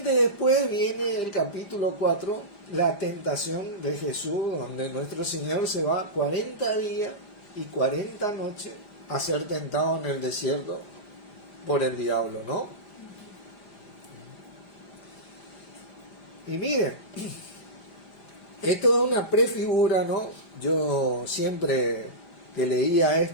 después viene el capítulo 4, la tentación de Jesús, donde nuestro Señor se va 40 días y 40 noches a ser tentado en el desierto por el diablo, ¿no? Y miren, esto es una prefigura, ¿no? Yo siempre que leía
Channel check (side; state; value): right; late; 5.0 ms